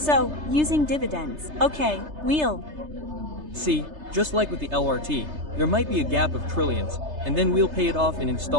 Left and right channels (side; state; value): left; late; 3.3 ms